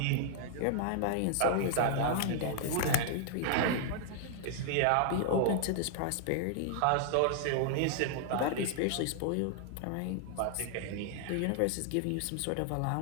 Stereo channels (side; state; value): both; different; correlation 0.00